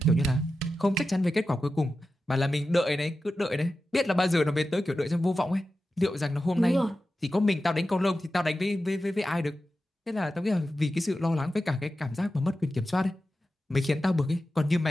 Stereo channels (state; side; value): normal; both; correlation 0.92